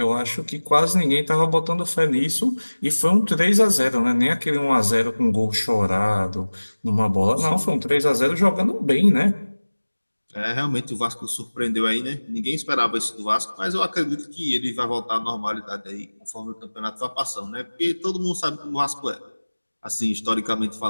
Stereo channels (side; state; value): both; inverted; correlation -1.00